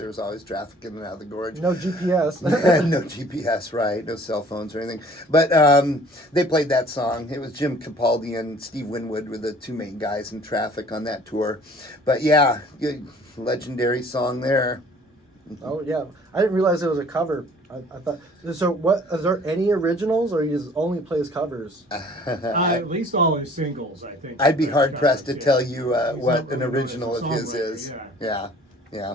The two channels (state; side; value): normal; both; correlation 0.52